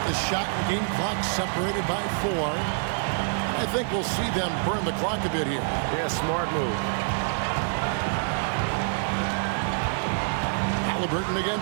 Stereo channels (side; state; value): left; silent; digital silence